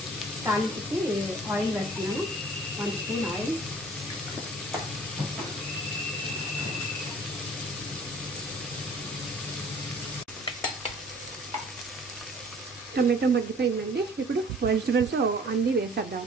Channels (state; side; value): normal; both; correlation 0.52